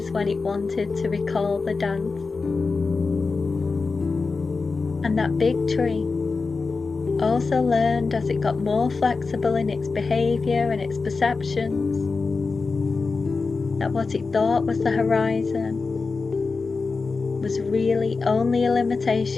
when it wanted to recall the dance. And that big tree also learned, as it got more flexible in its behaviour and its perceptions, that what it thought was the horizon was really only a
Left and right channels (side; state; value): right; quieter; 4.3 dB